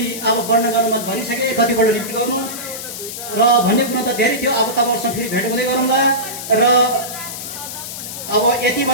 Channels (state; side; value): noise; left; hiss, 8 dB below the sound